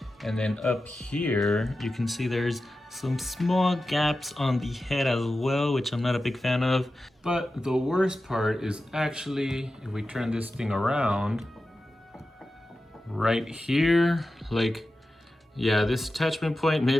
And then up here, you can see there's some small gaps on the head as well, which I'm not a big fan of. But the worst part is actually, if we turn this thing around, right here, like, yeah, this attachment point,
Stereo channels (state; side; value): normal; both; correlation 0.93